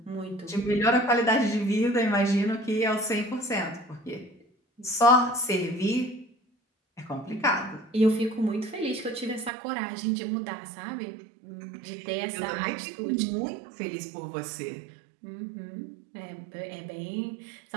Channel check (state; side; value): drops out; left; at 9.5 s